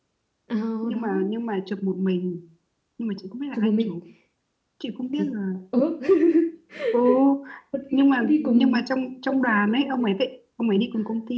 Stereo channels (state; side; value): identical; both; correlation 1.00